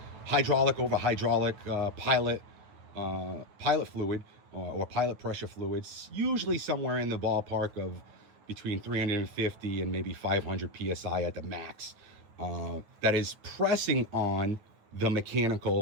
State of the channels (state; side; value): late; left; 9.4 ms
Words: hydraulic over hydraulic pilot fluid or pilot pressure fluids, usually somewhere in the ballpark of between 350 and maybe 500 psi at the max, that is pressing on the